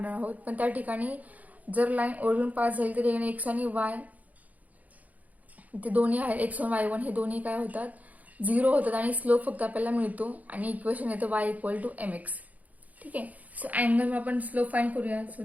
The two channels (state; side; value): late; left; 0.076 ms